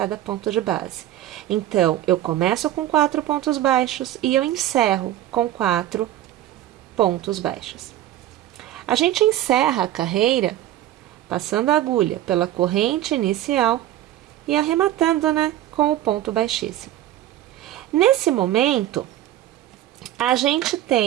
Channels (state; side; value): quieter; left; 13.2 dB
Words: ponto de base. Então, eu começo com 4 pontos baixos e eu encerro com 4 pontos baixos. A gente encerra a carreira passando a agulha pela corrente inicial e arrematando, né, com o ponto baixíssimo. Nesse momento, a gente